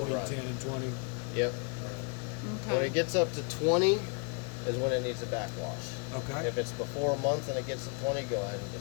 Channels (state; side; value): quieter; right; 36.5 dB